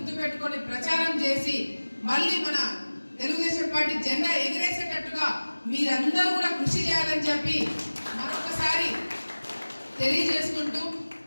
పెట్టుకొని ప్రచారం చేసి మళ్ళీ మన తెలుగుదేశం పార్టీ జెండా ఎగిరేసేటట్టుగా మీరందరూ కూడా కృషి చేయాలని చెప్పి మరొకసారి తెలియజేసుకుంటూ,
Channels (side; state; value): both; inverted; correlation -1.00